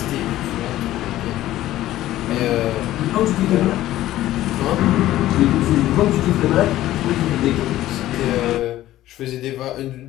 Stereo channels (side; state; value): right; quieter; 14.5 dB